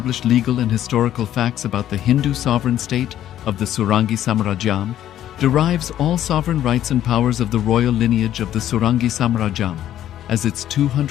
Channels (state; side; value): quieter; right; 11.8 dB